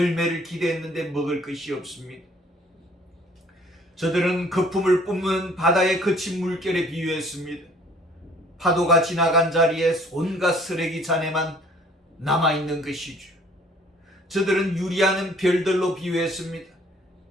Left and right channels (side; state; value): both; normal; correlation 0.57